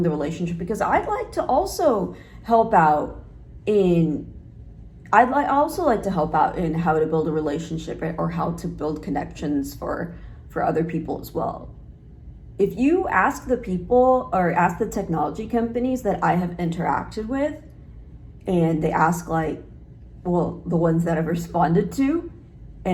the relationship because I'd like to also help out in how to build a relationship or how to build connections for other people as well. If you ask the people or ask the technology companies that I have interacted with, and they ask the ones that I've responded to,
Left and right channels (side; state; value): both; identical; correlation 1.00